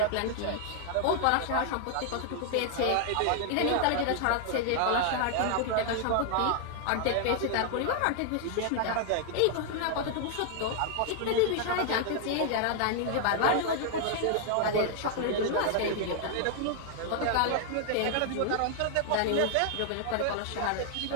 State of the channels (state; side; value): different; both; correlation 0.00